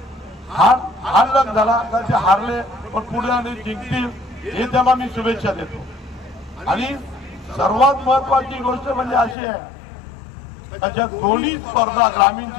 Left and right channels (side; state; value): right; drops out; at 9.3 s